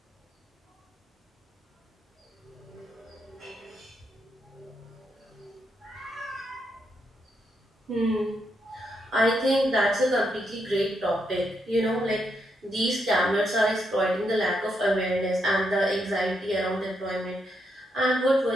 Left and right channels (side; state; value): both; normal; correlation 0.80